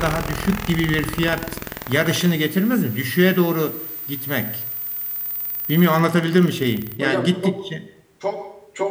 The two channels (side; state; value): both; identical; correlation 1.00